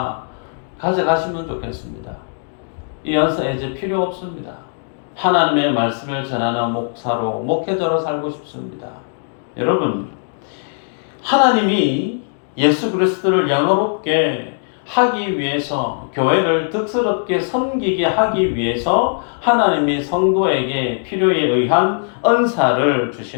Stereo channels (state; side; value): silent; right; digital silence